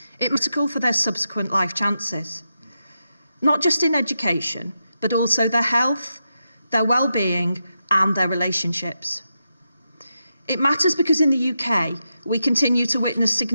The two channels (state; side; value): inverted; both; correlation -0.87